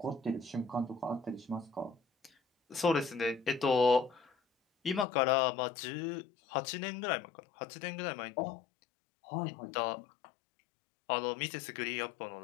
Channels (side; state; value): right; drops out; at 5.1 s